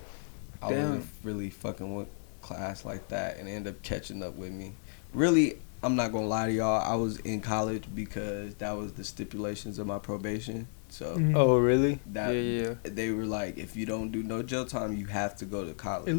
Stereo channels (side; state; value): right; silent; digital silence